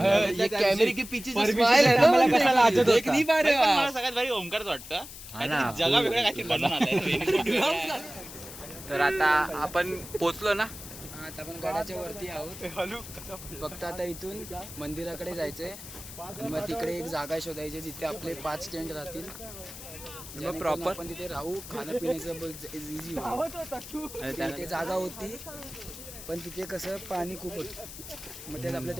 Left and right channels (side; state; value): left; noise; hiss, 13 dB below the sound